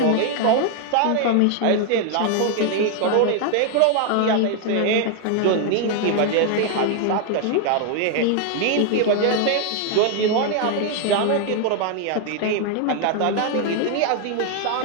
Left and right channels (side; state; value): both; different; correlation 0.00